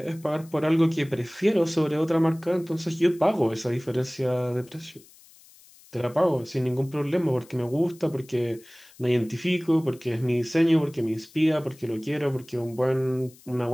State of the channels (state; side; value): noise; left; hiss, 25 dB below the sound